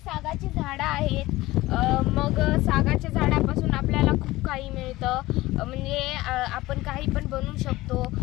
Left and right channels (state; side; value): quieter; right; 18.4 dB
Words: झाडं आहेत. मग सागाच्या झाडापासून आपल्याला खूप काही मिळतं. म्हणजे आपण काही पण बनवू शकतो.